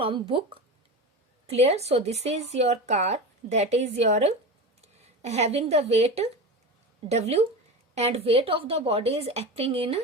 book. Clear? So this is your car, that is your having the weight W, and weight of the body is acting in a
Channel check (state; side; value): normal; both; correlation 0.26